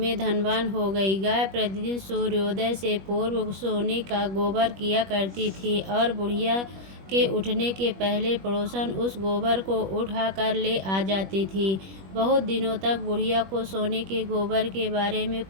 धनवान हो गई। गाय प्रतिदिन सूर्योदय से पूर्व सोने का गोबर किया करती थी और बुढ़िया के उठने के पहले पड़ोसन उस गोबर को उठाकर ले आ जाती थी। बहुत दिनों तक बुढ़िया को सोने के गोबर के बारे में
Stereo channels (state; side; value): late; left; 21 ms